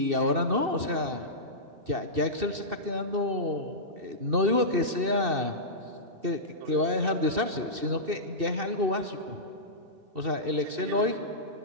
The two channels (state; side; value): late; left; 2.6 ms